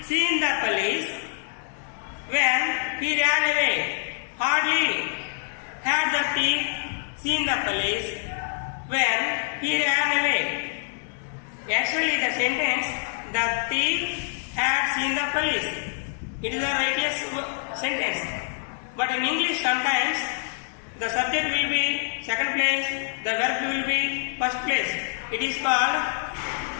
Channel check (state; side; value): silent; right; 61 dB below the other